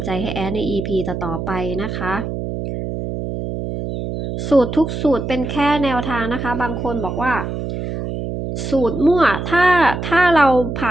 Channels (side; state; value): right; noise; hum, 5 dB below the sound